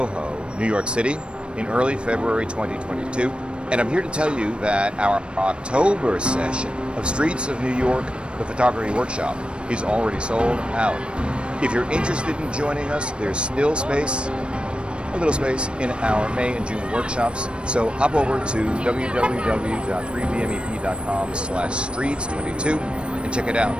New York City, in early February 2022, and I'm here to tell you that our October session of Streets of New York, the photography workshop, is already sold out. If you're interested in joining us, there's still space, a little space, in our May and June workshops, so hop over to www.3bmep.com/streets22 and check it out.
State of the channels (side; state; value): left; late; 0.057 ms